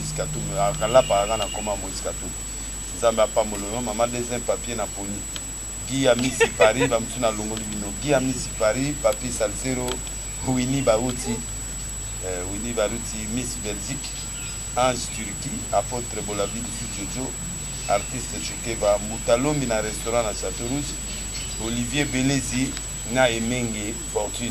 Katumbi akala paranga na koma Moïse Katumbi. Nzambe apambololo mama deuxième papier na poni. Guy Amisi Paris bamtu na longoli bino. Guy Amisi Paris papi Salsero Winnie Baruti Miss Belgique Ange Turquie apôtre Bolavi du Jojo artiste Chukeva Moutalombi na restaurant na Château Rouge Olivier Belezi na Emenge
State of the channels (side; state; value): both; identical; correlation 1.00